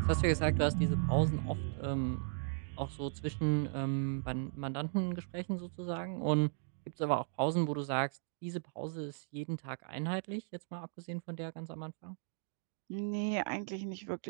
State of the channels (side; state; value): left; silent; digital silence